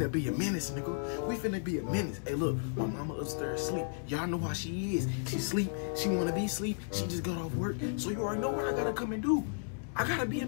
be a menace, nigga. We finna be a menace. Hey, look, my mama upstairs asleep. Y'all know how she is. She sleep. She wanna be asleep. She just got off work. So you already know what I gotta come and do. I gotta be a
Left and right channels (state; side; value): silent; right; digital silence